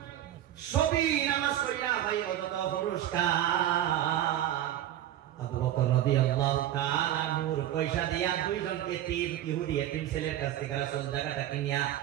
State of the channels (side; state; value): left; quieter; 12.4 dB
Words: সবই নামাজ পড়িয়া ভাই কত পুরস্কার। আবু বকর রাদিয়াল্লাহু তাআলা আনহুর পয়সা দিয়া 2 জনকে 3 ইহুদি এতিম ছেলের কাছ থেকে রাসূল জায়গাটা কিনিয়া